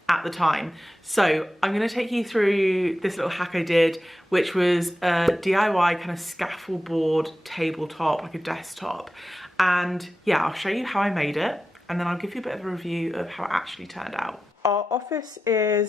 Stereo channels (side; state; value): both; normal; correlation 0.91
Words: at the time. So I'm going to take you through this little hack I did, which was a DIY kind of scaffold board tabletop, like a desktop. And yeah, I'll show you how I made it and then I'll give you a bit of a review of how it actually turned out. Our office